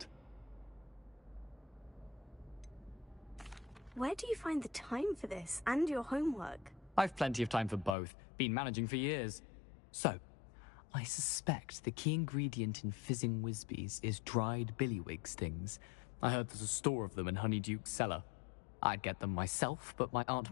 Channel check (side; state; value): right; drops out; at 8.0 s